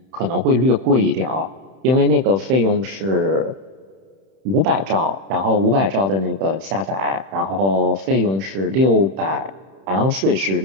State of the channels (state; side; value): late; left; 31 ms